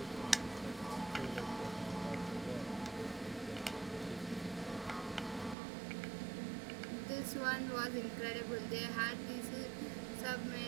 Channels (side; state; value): left; drops out; at 5.6 s